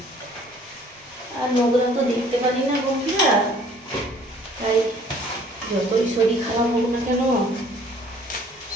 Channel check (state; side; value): normal; both; correlation 0.56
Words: আর নোংরা তো দেখতে পারি না বন্ধুরা, তাই যতই শরীর খারাপ হোক না কেন